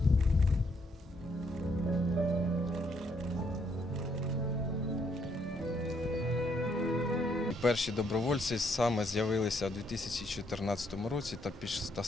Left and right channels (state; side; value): normal; both; correlation 0.72